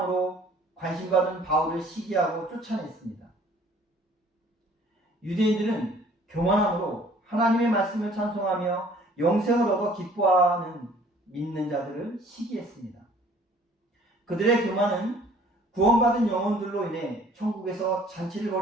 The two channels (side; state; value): both; normal; correlation 0.55